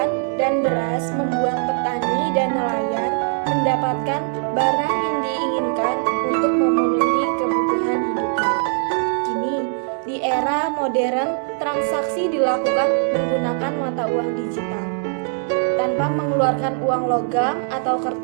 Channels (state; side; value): silent; left; 56 dB below the other